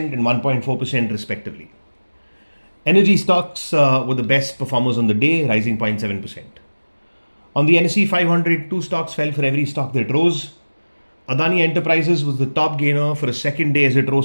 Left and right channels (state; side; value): inverted; both; correlation -1.00